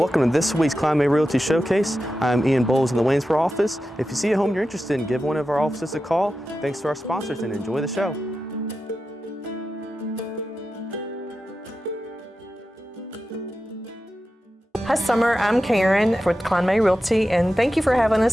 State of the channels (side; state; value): both; normal; correlation 0.91